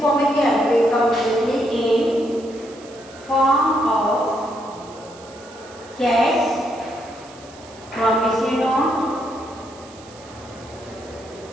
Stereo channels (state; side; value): noise; right; hiss, 22 dB below the sound